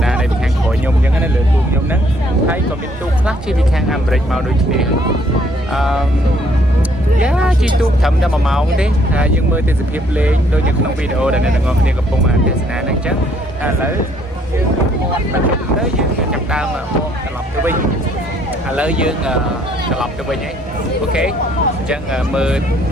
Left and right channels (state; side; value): normal; both; correlation 0.65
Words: ដានៅពីខាងក្រោយខ្ញុំអញ្ចឹងណាលើទូកខ្ញុំហ្នឹងហើយក៏មានទូកខ្លះជិះពីខាងអាមេរិកមកដូចគ្នាយ៉ាជិះទូកត្រឹមតែ1ម៉ោងទេហើយយើងមើលទេសភាពលេងដូចនៅក្នុងវីដេអូដែលអ្នកទាំងអស់គ្នាកំពុងអានទស្សនាហ្នឹងអញ្ចឹងឥឡូវយើងទៅយើងចាប់ដើមមកត្រឡប់ទៅវិញឥឡូវយើងត្រឡប់ទៅវិញហ៎អូខេអញ្ចឹងមើល